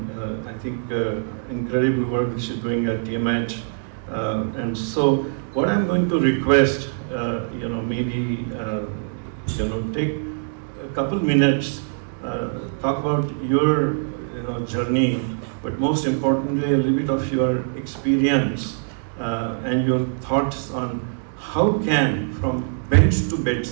I think incredible work that she's doing at TMH. And so what I'm going to request, maybe, take a couple minutes, talk about your, journey, but most importantly, a little bit of your experience and your thoughts on how can, from bench to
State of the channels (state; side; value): silent; left; digital silence